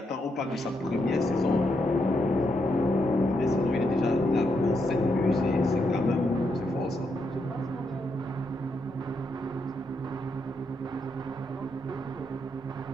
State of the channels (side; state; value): both; normal; correlation 0.80